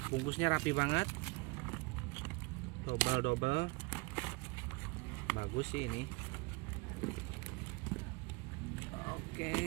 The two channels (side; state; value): left; quieter; 26.4 dB